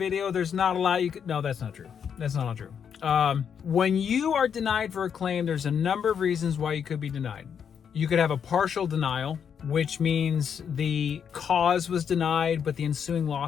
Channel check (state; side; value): quieter; right; 7.6 dB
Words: there's not a lot you could... No, that's not true. That's not true. When you are denied for a claim, there's a number of reasons why you could be denied. You could have a partial denial, which means the cause was denied, but the ensuing